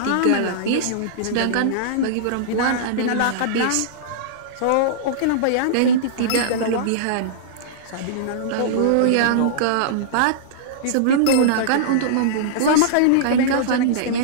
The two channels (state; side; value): different; both; correlation -0.02